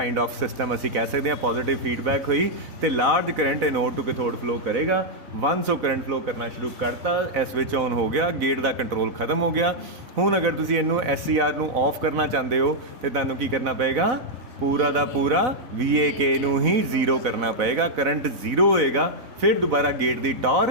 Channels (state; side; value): late; left; 4.0 ms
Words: of system ਅਸੀਂ ਕਹਿ ਸਕਦੇ ਹਾਂ। ਪੋਜ਼ਿਟਿਵ ਫੀਡਬੈਕ ਹੋਈ ਤੇ large current anode to ਕੈਥੋਡ flow ਕਰੇਗਾ। ਵਨਸ ਉਹ ਕਰੰਟ ਫਲੋ ਕਰਨਾ ਸ਼ੁਰੂ ਕਰਤਾ, ਇਹ ਸਵਿਚ ਔਨ ਹੋ ਗਿਆ, ਗੇਟ ਦਾ ਕੰਟਰੋਲ ਖਤਮ ਹੋ ਗਿਆ। ਹੁਣ ਅਗਰ ਤੁਸੀਂ ਇਹਨੂੰ SCR ਨੂੰ ਆਫ ਕਰਨਾ ਚਾਹੁੰਦੇ ਹੋ ਤੇ ਤੁਹਾਨੂੰ ਕੀ ਕਰਨਾ ਪਏਗਾ, ਪੂਰਾ ਦਾ ਪੂਰਾ VAK ਨੂੰ ਹੀ ਜ਼ੀਰੋ ਕਰਨਾ ਪਏਗਾ। ਕਰੰਟ ਜ਼ੀਰੋ ਹੋਏਗਾ, ਫਿਰ ਦੁਬਾਰਾ ਗੇਟ ਦੀ